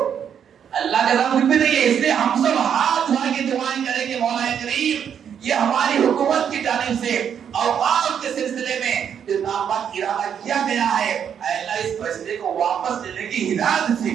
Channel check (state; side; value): quieter; left; 8.3 dB